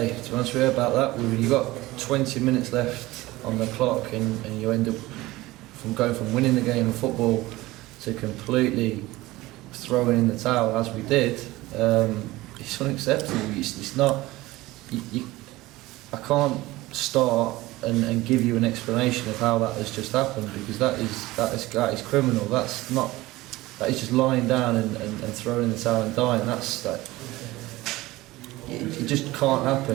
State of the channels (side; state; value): left; quieter; 18.9 dB